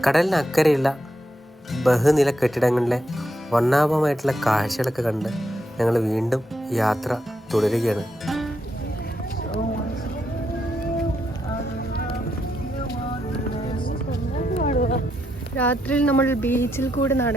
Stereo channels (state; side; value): normal; both; correlation 0.80